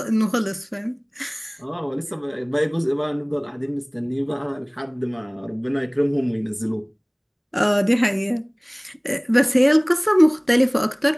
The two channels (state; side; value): identical; both; correlation 1.00